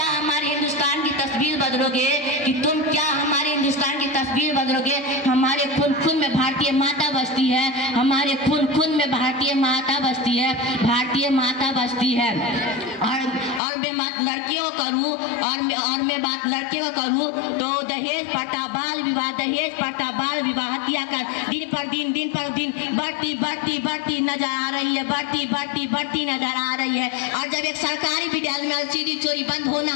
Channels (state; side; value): drops out; right; at 13.6 s